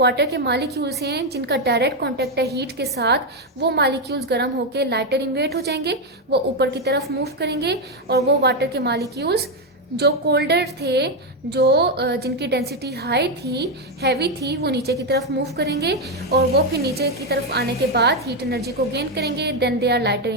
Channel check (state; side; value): normal; both; correlation 0.05